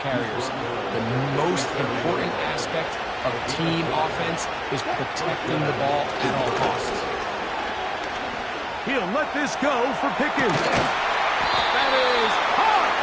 carriers, the most important aspect of team offense is protecting the ball at all costs. He'll let this go for Pickens. That is hard.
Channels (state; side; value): identical; both; correlation 1.00